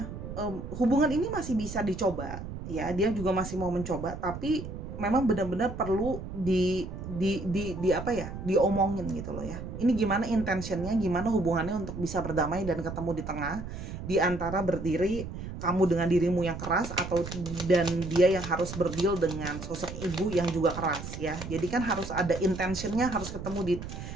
hubungan ini masih bisa dicoba ya, dia juga masih mau mencoba, tapi memang benar-benar perlu diomongin gitu loh ya. Ini gimana intentionnya, gimana hubungannya untuk bisa berdamai dan ketemu di tengah, di antara berdiri kamu dengan dirimu yang keras, atau dan dia yang harus berdeal dengan sosok ibu yang juga keras ya. Jadi kan harus ada intentionnya, harus ketemu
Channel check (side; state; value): right; noise; rumble, 9 dB below the sound